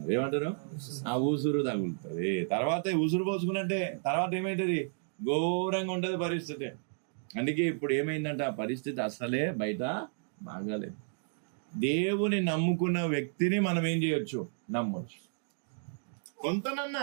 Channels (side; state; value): left; silent; digital silence